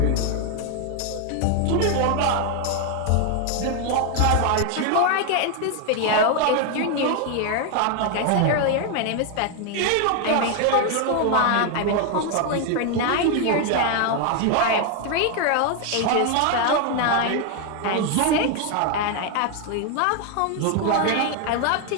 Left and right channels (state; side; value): different; both; correlation 0.01